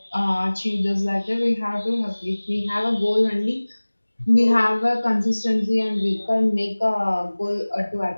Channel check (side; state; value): both; inverted; correlation -1.00